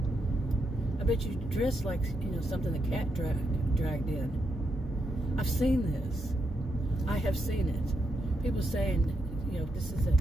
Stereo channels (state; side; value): normal; both; correlation 0.81